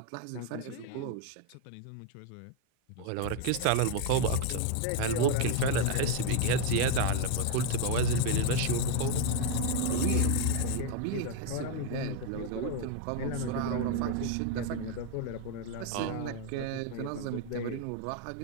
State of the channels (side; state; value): both; different; correlation 0.01